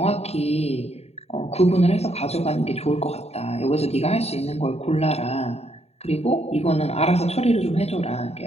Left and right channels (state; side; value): late; right; 0.30 ms